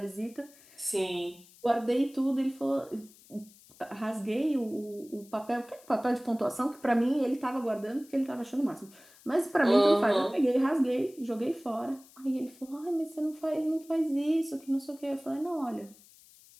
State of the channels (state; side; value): noise; left; hiss, 25 dB below the sound